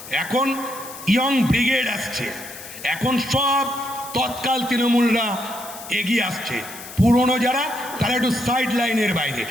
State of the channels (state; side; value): noise; left; hiss, 14 dB below the sound